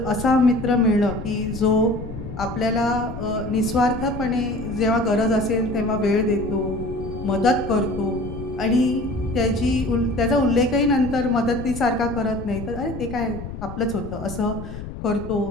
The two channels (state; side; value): noise; left; rumble, 10 dB below the sound